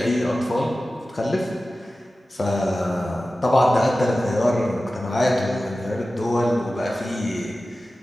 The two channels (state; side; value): normal; both; correlation 0.95